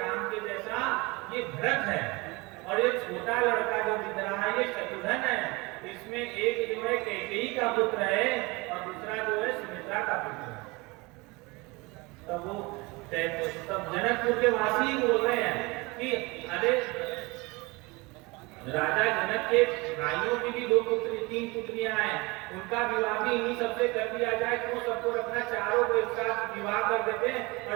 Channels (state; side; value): quieter; left; 24.9 dB